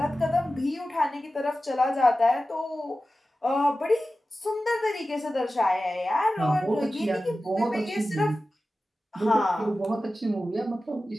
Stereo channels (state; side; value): normal; both; correlation 0.94